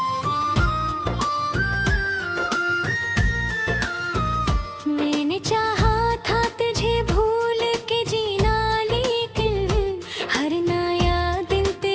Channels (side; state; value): both; identical; correlation 1.00